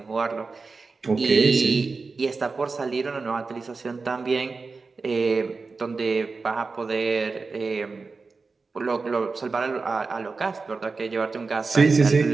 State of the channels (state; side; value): quieter; left; 4.2 dB